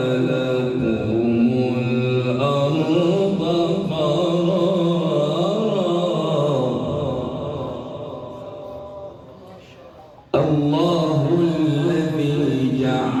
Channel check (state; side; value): identical; both; correlation 1.00